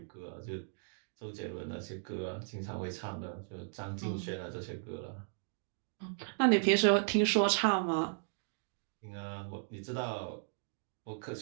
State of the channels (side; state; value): left; silent; digital silence